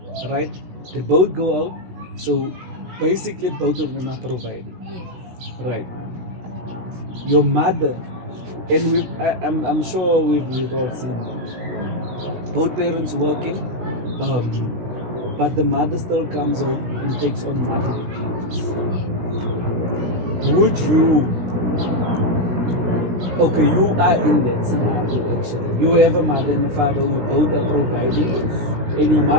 right? They both go out, so basically both of them are providing, Yeah. right? Your mother, and I'm sure we've all seen both parents working, but the mother still comes home and takes on motherly duties. Would you? Okay, you are in that scenario actually. You have a mother and a father who both are providing, and your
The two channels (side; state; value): left; late; 16 ms